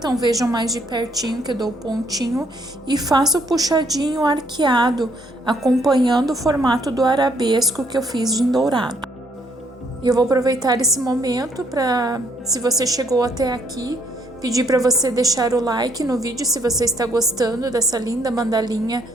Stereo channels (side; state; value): both; normal; correlation 0.69